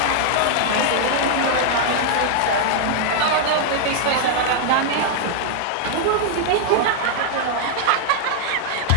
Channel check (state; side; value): different; both; correlation -0.01